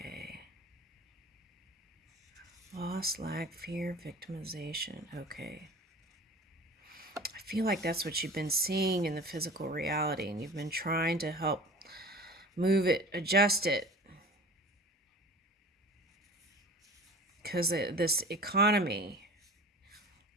Loss, lack, fear, victimization. Okay. I feel like that's what you've been seeing in the physical reality, and you've been trying to help move it, adjust it. Because this economy.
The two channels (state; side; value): normal; both; correlation 0.39